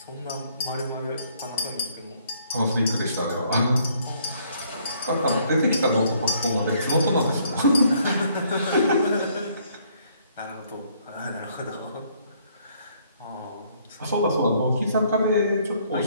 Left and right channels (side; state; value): both; inverted; correlation -0.66